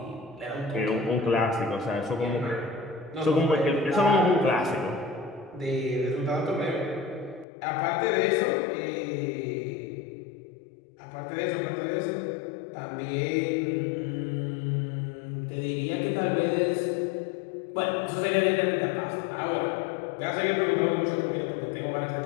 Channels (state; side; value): drops out; right; at 7.5 s